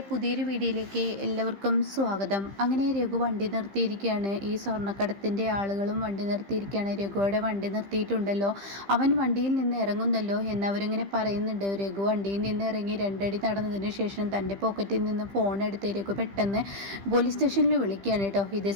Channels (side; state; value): left; late; 15 ms